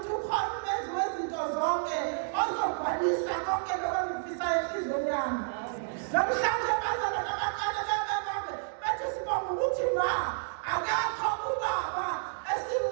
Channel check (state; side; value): silent; left; digital silence